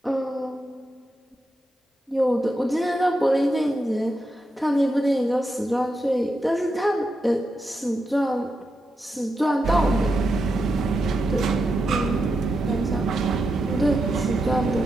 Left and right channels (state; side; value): normal; both; correlation 0.86